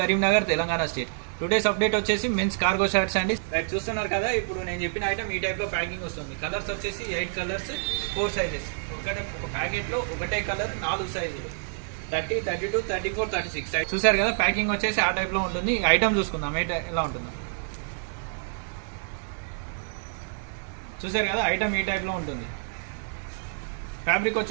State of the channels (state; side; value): silent; left; digital silence